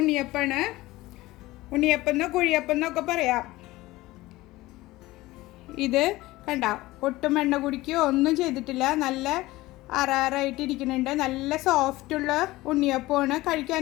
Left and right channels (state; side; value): quieter; right; 18.7 dB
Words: ഉണ്ണിയപ്പമാണ്. ഉണ്ണിയപ്പം കുഴിയപ്പം എന്നൊക്കെ പറയാം. ഇത് കണ്ട, ഒട്ടും എണ്ണ കുടിക്കുകയോ ഒന്നും ചെയ്തിട്ടില്ല. നല്ല അറാറായിട്ടിരിക്കുന്നുണ്ട്. നല്ല സോഫ്റ്റുള്ള ഉണ്ണിയപ്പമാണ്.